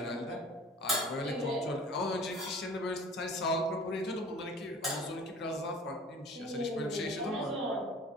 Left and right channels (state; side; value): normal; both; correlation 0.45